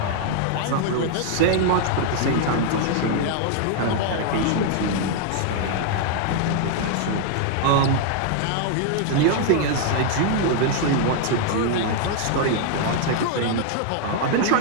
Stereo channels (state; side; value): different; both; correlation 0.00